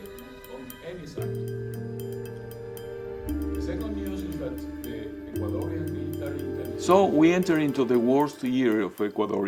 On any side. The second news is that the Ecuadorian military intelligence. So we enter into the worst year of Ecuador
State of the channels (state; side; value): identical; both; correlation 1.00